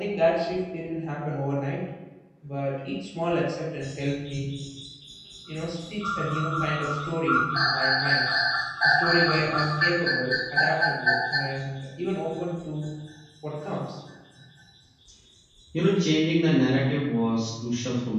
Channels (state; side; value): identical; both; correlation 1.00